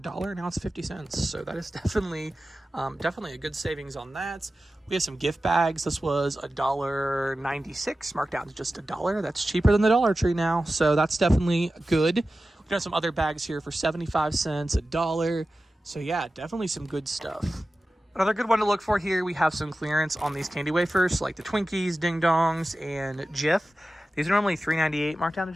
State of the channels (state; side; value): normal; both; correlation 0.94